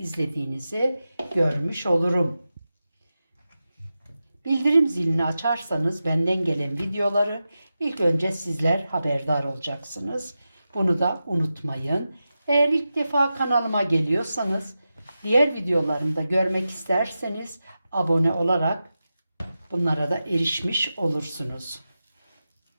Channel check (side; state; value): both; inverted; correlation -0.92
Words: görmüş olurum. Bildirim zilini açarsanız benden gelen videoları ilk önce sizler haberdar olacaksınız. Bunu da unutmayın. Eğer ilk defa kanalıma geliyorsanız, diğer videolarımı da görmek isterseniz abone olarak bunlara da erişmiş olursunuz.